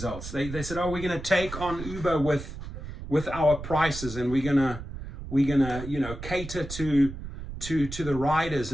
They said, oh, we're going to take on Uber with our prices, and we're gonna cater to the riders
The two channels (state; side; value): noise; right; rumble, 10 dB below the sound